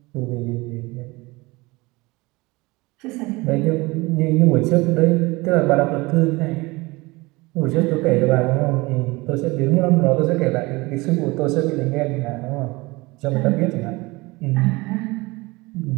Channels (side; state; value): left; quieter; 23.1 dB